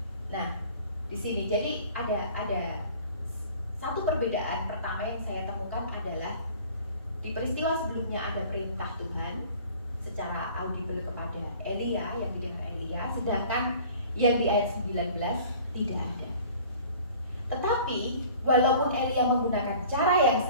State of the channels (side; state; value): both; inverted; correlation -0.48